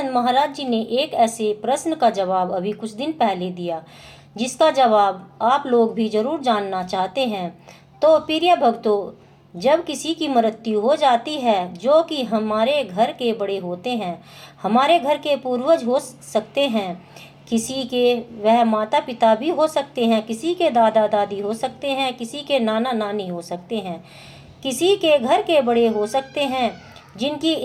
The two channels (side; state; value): both; identical; correlation 1.00